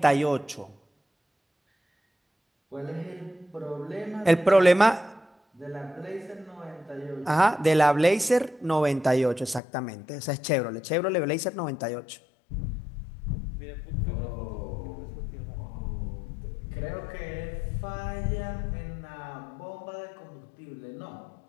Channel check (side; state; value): right; drops out; at 9.6 s